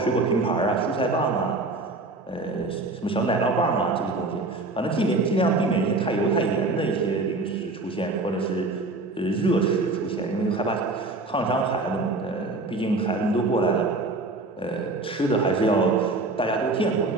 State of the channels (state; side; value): quieter; left; 3.2 dB